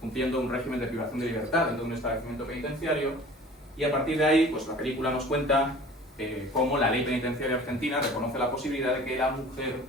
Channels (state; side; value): normal; both; correlation 0.45